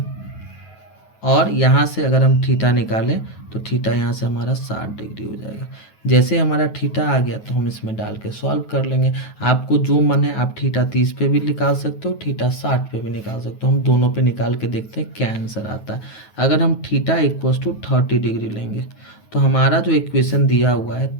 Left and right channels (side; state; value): right; late; 9.3 ms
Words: और यहाँ से अगर हम थीटा निकालें तो थीटा यहाँ से हमारा 60 डिग्री हो जाएगा। जैसे हमारा थीटा आ गया तो हम इसमें डाल के सॉल्व कर लेंगे। आपको जो मन है आप थीटा 30 पे भी निकाल सकते हो, थीटा 60 पे भी निकाल सकते हो। हम दोनों पे निकाल के देखते हैं क्या आंसर आता है। अगर हम थीटा इक्वस टू 30 डिग्री लेंगे तो हमारा जो इक्वेशन दिया हुआ है